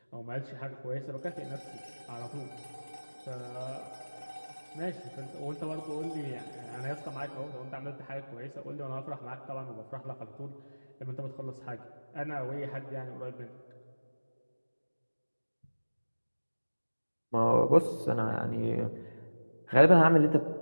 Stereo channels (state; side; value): inverted; both; correlation -1.00